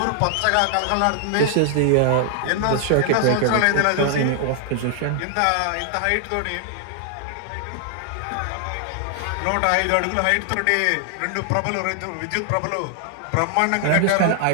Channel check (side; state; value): both; different; correlation 0.00